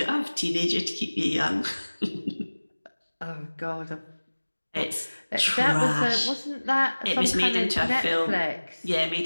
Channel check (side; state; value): both; inverted; correlation -1.00